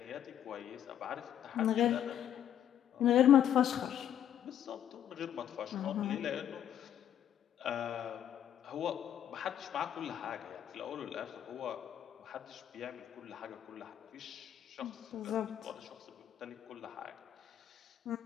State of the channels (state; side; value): quieter; right; 10.2 dB